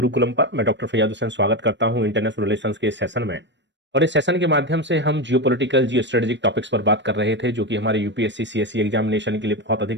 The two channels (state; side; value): late; left; 0.53 ms